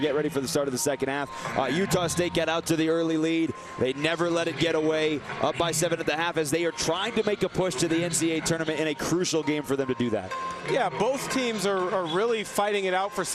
ready for the start of the second half. Utah State got out to the early lead. They never let it get away, up by 7 at the half as they are trying to make a push to the NCAA tournament in a crucial game for them to do that. Yeah, both teams are really fighting it out for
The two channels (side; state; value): both; identical; correlation 1.00